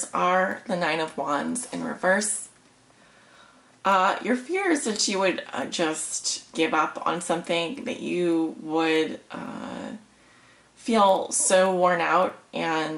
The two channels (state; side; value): identical; both; correlation 1.00